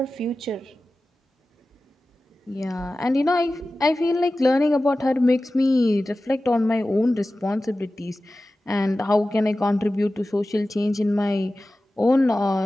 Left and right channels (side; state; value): both; normal; correlation 0.95